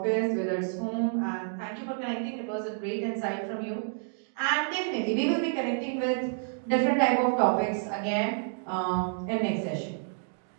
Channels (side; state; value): left; silent; digital silence